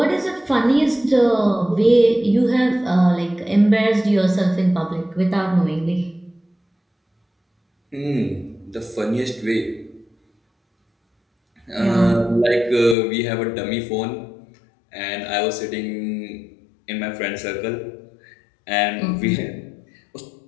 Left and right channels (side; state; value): right; drops out; at 13.0 s